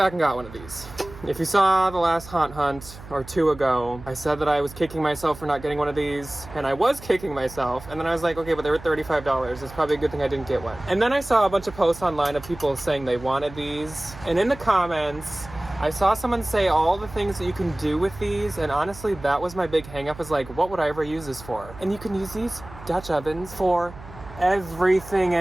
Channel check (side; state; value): right; noise; hum, 17 dB below the sound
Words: and got one of these. If you saw the last haunt hunt or 2 ago, I said that I was kicking myself for not getting one of these, and I was kicking myself, and then I was like, okay, but they were $35. It's probably a good thing I didn't get one. And then I saw a bunch of posts online of people saying they wanted these, and in the comments, I saw someone say all the things that you can do with these, and honestly, that was my big hang up, is like, what would I ever use this for? And you can use these Dutch ovens for everything